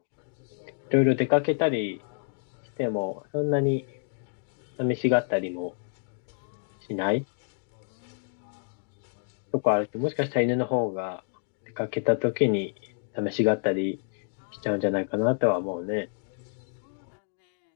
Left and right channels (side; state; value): right; silent; digital silence